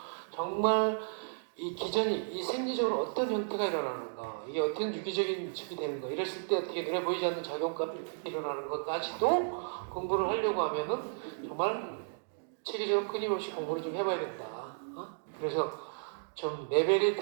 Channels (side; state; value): left; silent; digital silence